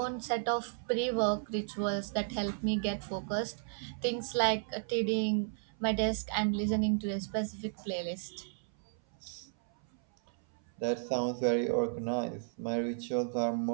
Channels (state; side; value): silent; left; 55 dB below the other